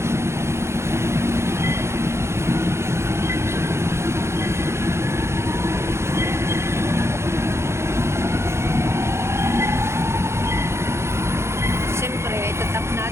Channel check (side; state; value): left; late; 0.13 ms